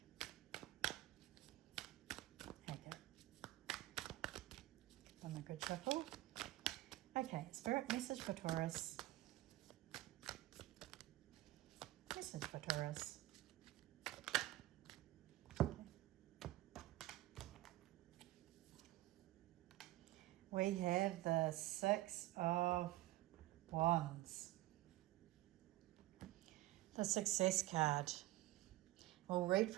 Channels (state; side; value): quieter; left; 17.0 dB